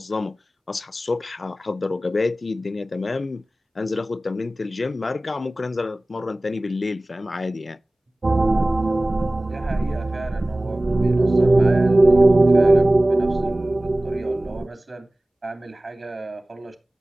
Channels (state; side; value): normal; both; correlation 0.98